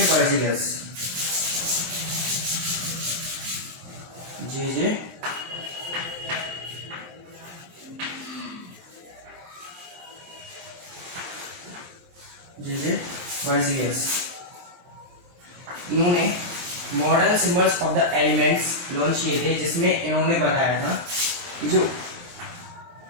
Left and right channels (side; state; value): left; late; 23 ms